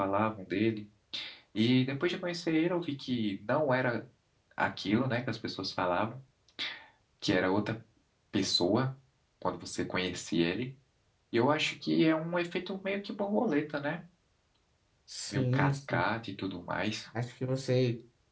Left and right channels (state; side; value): identical; both; correlation 1.00